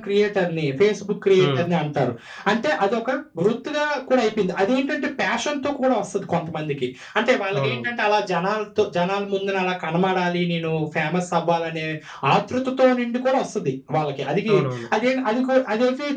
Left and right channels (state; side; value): identical; both; correlation 1.00